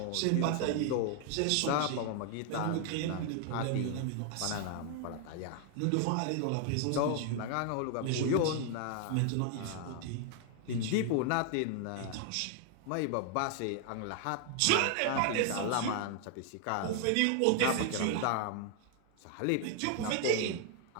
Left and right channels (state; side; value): different; both; correlation 0.00